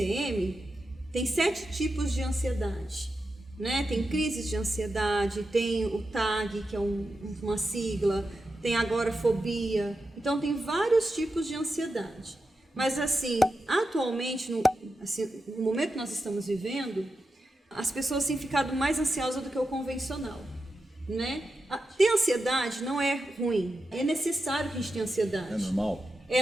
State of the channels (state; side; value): normal; both; correlation 0.89